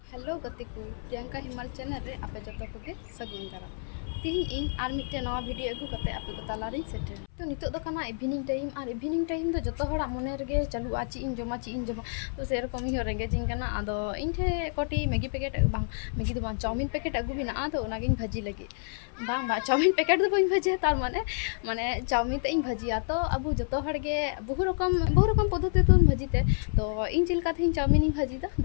Hello गति को प्रियंका हिमाल चैनल रे आपे जो को सगुन दारा तीन इन आर मिट्टे नवा वीडियो अगू करते आपे को तालारिन सेटर तो नितो दो कना इवनिंग टाइम तो जतो हड़ा मने रगे चालू आची इन जमा तो से रकम ही रेंगे जिंग कना आदो इन ठे कोटी मैगी पैकेट बांग मैगी दो बांग चाउमिन पैकेट अगू बिना आदो नागिन भाजी लगे बांग बा चाउमिन पैकेट दो बइन भाजी तार माने माने चाउमिन ते इन भाजिया तो अबू जतो हड़गे बहु रकम पद्धति तो भाजीते तो इन चिलका थे चाउमिन इन भाजी दा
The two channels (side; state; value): right; silent; 58 dB below the other